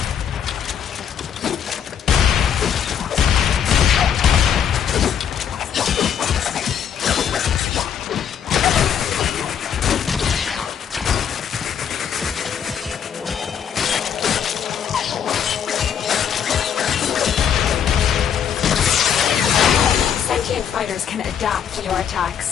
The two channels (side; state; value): right; quieter; 8.3 dB